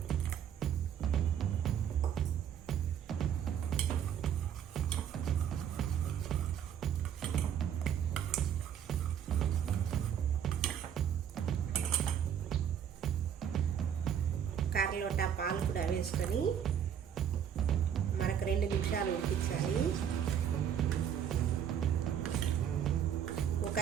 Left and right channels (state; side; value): quieter; left; 8.9 dB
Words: కర్రలోట పాలు కూడా వేసుకొని మరొక 2 నిమిషాలు ఉడికించాలి. ఒక